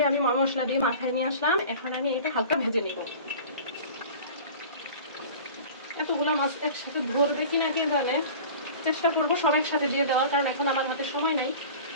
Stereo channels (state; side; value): inverted; both; correlation -0.39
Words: আমি মশলা দিয়ে মাখায় নিয়ে আসলাম, এখন আমি এটা হালকা ভেজে নিব। এতগুলো মাছ একসাথে ধরবে কিনা কে জানে, চেষ্টা করবো সব একসাথে দিয়ে দেওয়ার, কারণ এখন আমার হাতে সময় নাই।